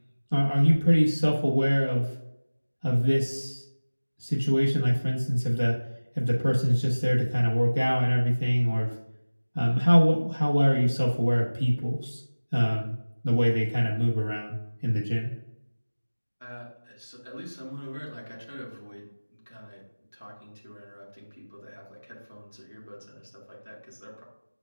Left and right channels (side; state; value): both; inverted; correlation -1.00